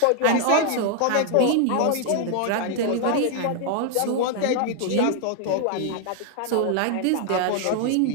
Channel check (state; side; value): different; both; correlation 0.00